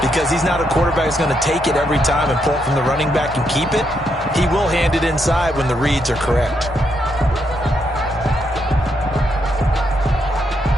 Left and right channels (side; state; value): both; normal; correlation 0.78